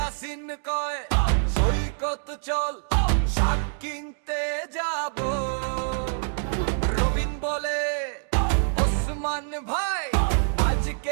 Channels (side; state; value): left; silent; digital silence